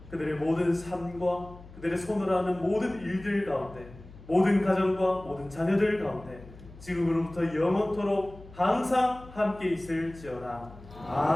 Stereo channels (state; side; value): noise; left; hum, 19 dB below the sound